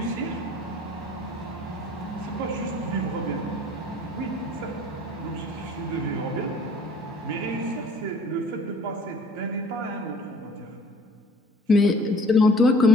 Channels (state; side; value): normal; both; correlation 0.51